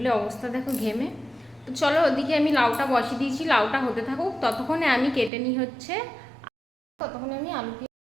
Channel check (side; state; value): left; drops out; at 5.3 s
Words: অবস্থা দেখো ঘেমে। তো চলো ওদিকে আমি লাউটা বসিয়ে দিয়েছি, লাউটা হতে থাকুক। ততক্ষণে আমি কেটে নিই হচ্ছে, ততক্ষণে আমি আলু।